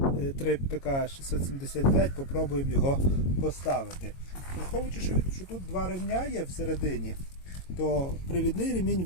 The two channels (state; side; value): late; right; 22 ms